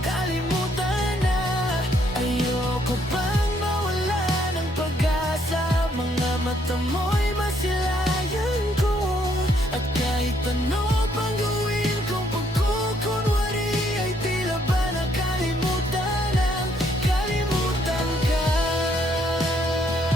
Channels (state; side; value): normal; both; correlation 0.70